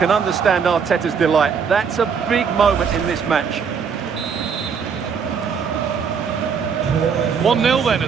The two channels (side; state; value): left; quieter; 6.4 dB